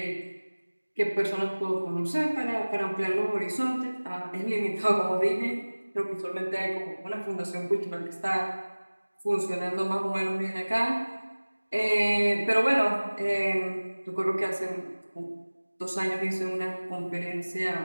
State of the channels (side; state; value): both; inverted; correlation -1.00